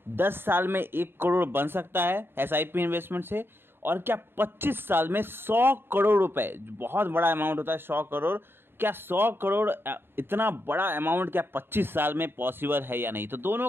10 साल में 1 करोड़ बन सकता है एसआईपी इन्वेस्टमेंट से, और क्या 25 साल में 100 करोड़ रुपए, बहुत बड़ा अमाउंट होता है 100 करोड़, क्या 100 करोड़ इतना बड़ा अमाउंट क्या 25 साल में पॉसिबल है या नहीं। तो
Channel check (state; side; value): late; left; 0.11 ms